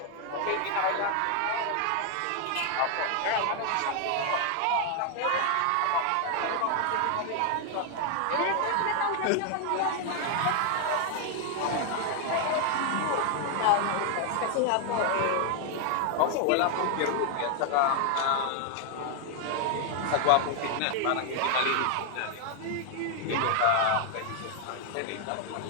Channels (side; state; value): both; different; correlation 0.00